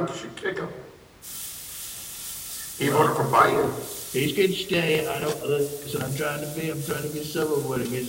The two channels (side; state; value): both; identical; correlation 1.00